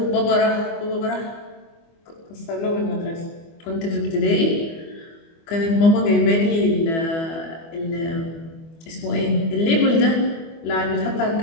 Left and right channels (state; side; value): late; right; 24 ms